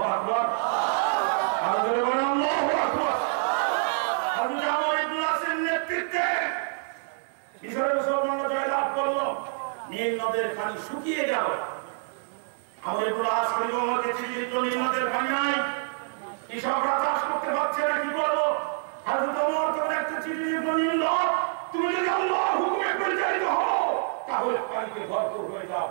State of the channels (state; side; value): silent; left; digital silence